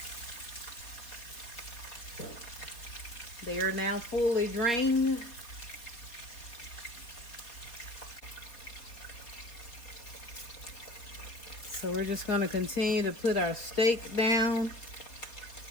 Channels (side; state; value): right; late; 4.2 ms